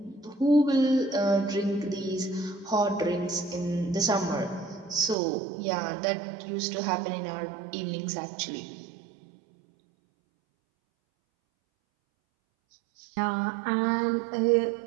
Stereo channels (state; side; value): drops out; left; at 5.2 s